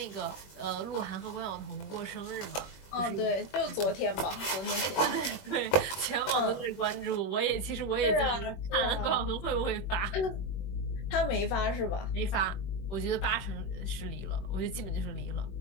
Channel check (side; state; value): right; late; 21 ms